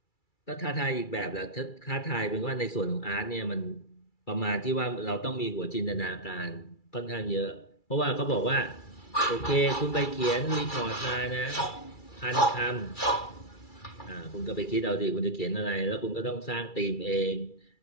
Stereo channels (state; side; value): late; right; 2.3 ms